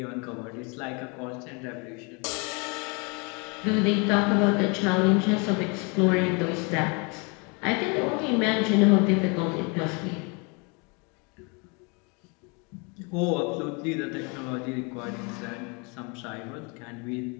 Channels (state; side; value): quieter; right; 31.7 dB